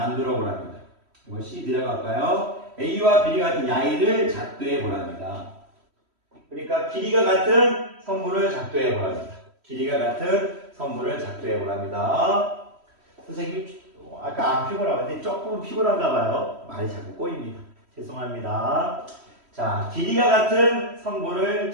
보랍니다. 이거 C 들어갈까요? A와 B 같은 야이를 작도해 보랍니다. 그러니까 길이가 같은 선분을 작도해 보랍니다. 길이가 같은 선분을 작도해 보랍니다. 선생님이 아까 안 피곤한데 조금 피곤한가 봐요. 말이 자꾸 꼬입니다. 죄송합니다. 자, 길이가 같은 선분을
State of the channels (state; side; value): late; left; 3.1 ms